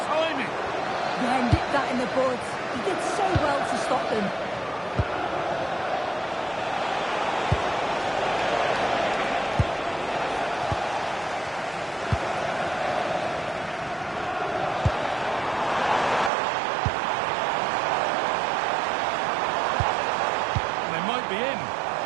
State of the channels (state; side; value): drops out; left; at 16.3 s